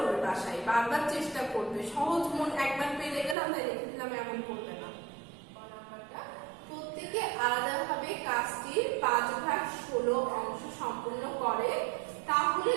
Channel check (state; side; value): drops out; left; at 3.4 s